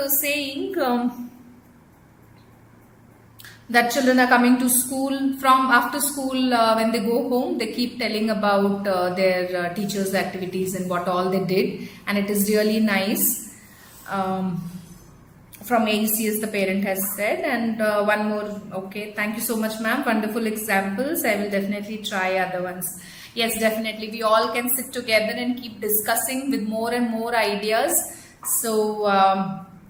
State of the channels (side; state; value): both; identical; correlation 1.00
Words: saying that children are coming to school. From after school, when they go home, they keep telling about their teachers' activities and what all they did, and it is really nice. From AECS, the parent has said. And one more. Okay, thank you so much, ma'am. Wonderful examples. I will definitely try other ones. Yes, definitely. We all can sit together and keep discussing with more and more ideas. So